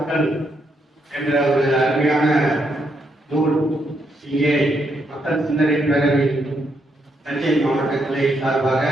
என்ற ஒரு அருமையான நூல் இங்கே மக்கள் சிந்தனை பேரவை தஞ்சை மாவட்ட கிளை சார்பாக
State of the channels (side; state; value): both; normal; correlation 0.78